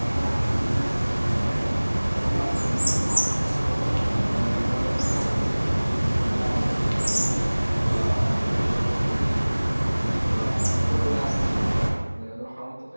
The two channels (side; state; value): both; inverted; correlation -1.00